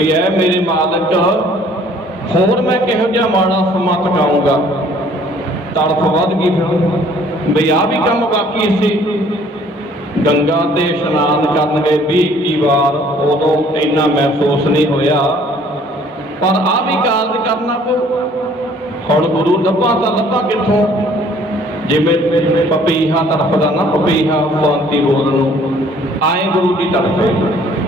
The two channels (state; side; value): normal; both; correlation 0.57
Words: ਐ ਮੇਰੇ ਮਾਲਕ, ਹੋਰ ਮੈਂ ਕਿਹੋ ਜਿਹਾ ਮਾੜਾ ਸਮਾਂ ਟਕਾਊਂਗਾ। ਤੜਫ ਵੱਧ ਗਈ ਫਿਰ ਵੀ ਆਹ ਵੀ ਕੰਮ ਬਾਕੀ ਸੀ। ਗੰਗਾ ਤੇ ਇਸ਼ਨਾਨ ਕਰਨ ਗਏ 20-21 ਵਾਰ, ਉਦੋਂ ਇੰਨਾ ਮਹਿਸੂਸ ਨਹੀਂ ਹੋਇਆ, ਪਰ ਆਹ ਵੀ ਕਾਰਜ ਕਰਨਾ ਪਊ। ਹੁਣ ਗੁਰੂ ਲੱਭਾਂ ਤਾਂ ਲੱਭਾਂ ਕਿੱਥੋਂ, ਜਿਵੇਂ ਪਪੀਹਾ ਤੜਫਦਾ ਨਾ, ਪਪੀਹਾ ਸ਼ਾਂਤੀ ਬੋਲ ਨੂੰ ਆਏ ਗੁਰੂ ਦੀ ਤੜਫੇ।